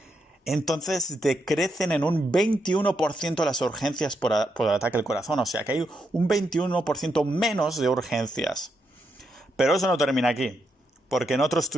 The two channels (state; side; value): normal; both; correlation 0.81